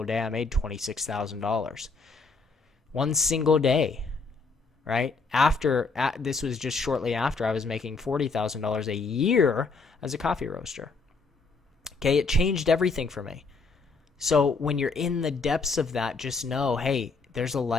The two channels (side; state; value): right; quieter; 4.2 dB